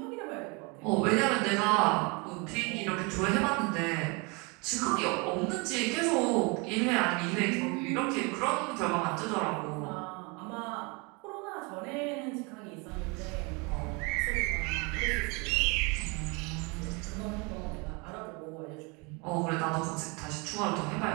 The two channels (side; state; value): left; quieter; 29.5 dB